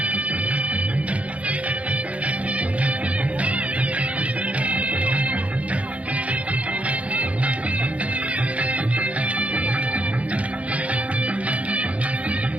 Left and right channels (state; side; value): late; left; 0.065 ms